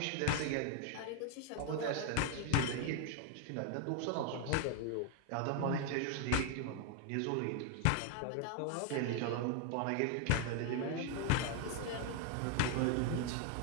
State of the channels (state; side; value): different; both; correlation 0.00